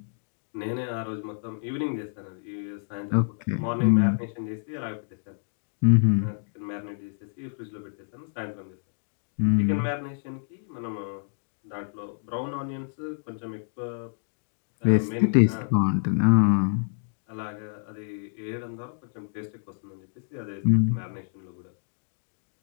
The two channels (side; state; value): right; silent; digital silence